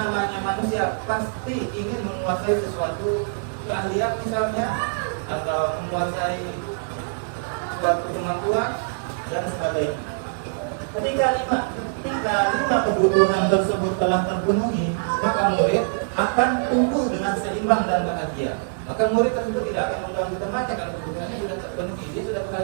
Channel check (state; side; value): silent; left; digital silence